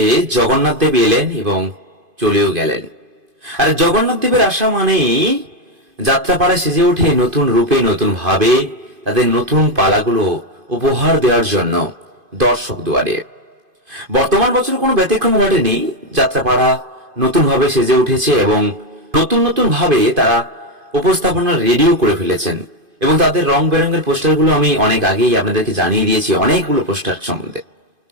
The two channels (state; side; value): late; left; 2.5 ms